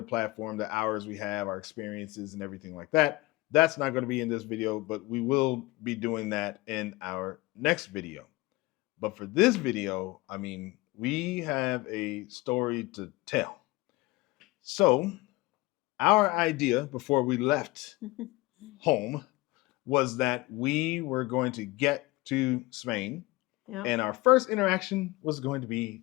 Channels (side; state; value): right; quieter; 20.9 dB